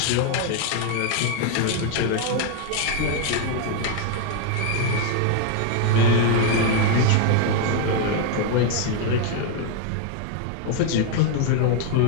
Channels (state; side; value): different; both; correlation 0.01